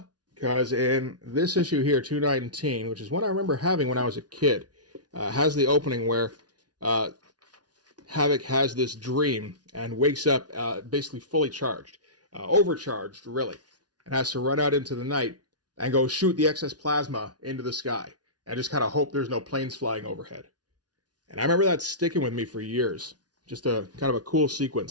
because in this issue here, 219, which is one I remember having when I was a kid, has the opening where Havoc has this dream and wakes up basically fully charged, overcharged really, and has to run out into the night and go shoot the excess plasma into the sky and just kind of hope there's no planes flying overhead. And I remember that sticking with me for years. Just a kind of a cool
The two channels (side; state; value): left; late; 0.69 ms